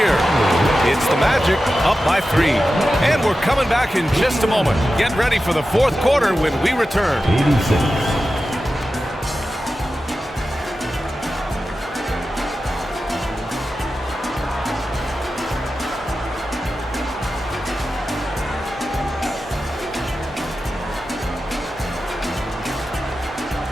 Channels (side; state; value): both; normal; correlation 0.93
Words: It's the Magic up by 3. And we're coming back in just a moment. Get ready for the fourth quarter when we return. 86.